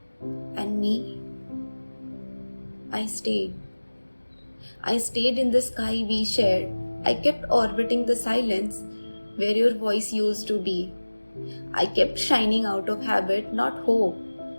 And me, I stayed. I stayed in the sky we shared. I kept orbiting the silence where your voice used to be. I kept shining out of habit, not hope.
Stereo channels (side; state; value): both; inverted; correlation -1.00